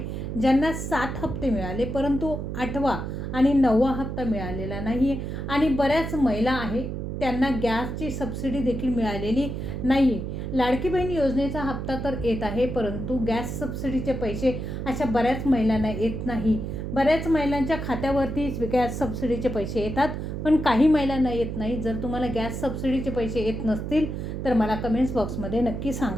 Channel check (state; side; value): noise; right; hum, 5 dB below the sound